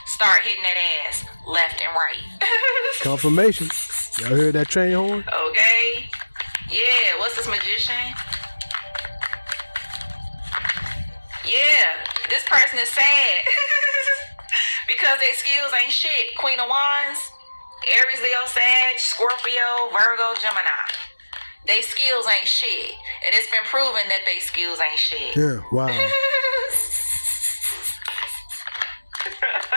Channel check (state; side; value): inverted; both; correlation -1.00